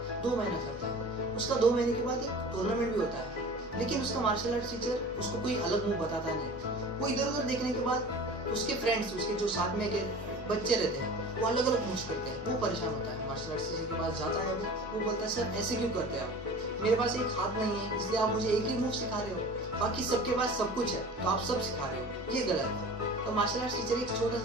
2 महीना करता है। उसका 2 महीने के बाद एक टूर्नामेंट भी होता है, लेकिन उसका मार्शल आर्ट टीचर उसको कोई अलग मूव बताता नहीं। वो इधर उधर देखने के बाद उसके फ्रेंड्स, उसके जो साथ में के बच्चे रहते हैं, वो अलग अलग मूव्स करते हैं। वो परेशान होता है। मार्शल आर्ट टीचर के पास जाता है, वो बोलता है सर ऐसे क्यों करते हैं आप, मेरे पास एक हाथ नहीं है इसलिए आप मुझे एक ही मूव सिखा रहे हो, बाकी सबके पास सब कुछ है तो आप सब सिखा रहे हो, ये गलत है। तो मार्शल आर्ट टीचर एक छोटा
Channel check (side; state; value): both; normal; correlation 0.39